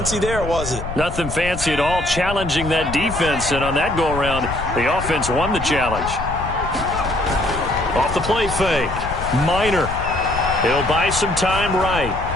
there, was it? Nothing fancy at all, challenging that defense. And on that go-around, the offense won the challenge. Off the play fake. Minor. He'll buy some time right.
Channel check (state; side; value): noise; left; rumble, 8 dB below the sound